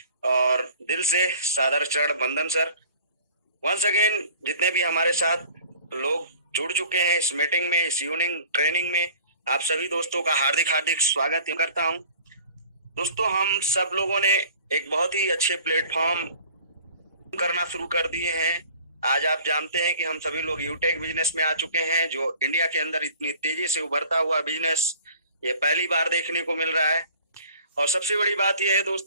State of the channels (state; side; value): inverted; both; correlation -0.48